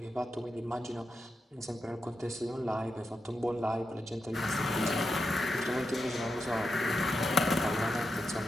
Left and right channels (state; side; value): normal; both; correlation 0.87